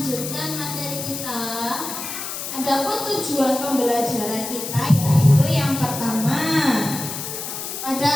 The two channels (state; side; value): noise; left; hiss, 6 dB below the sound